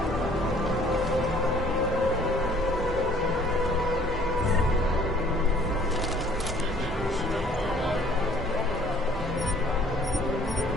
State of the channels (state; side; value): normal; both; correlation 0.57